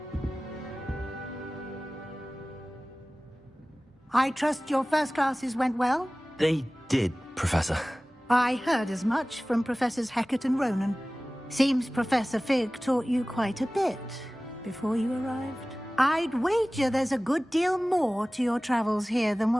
I trust your first classes went well? They did, Professor. I heard as much from Professors Hecat and Ronan. Seems Professor Fig taught you quite a bit before you arrived. I'd wager there's a good deal more to your travels here than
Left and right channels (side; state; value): both; normal; correlation 0.98